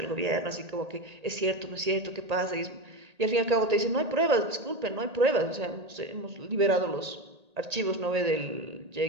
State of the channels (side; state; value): left; late; 1.8 ms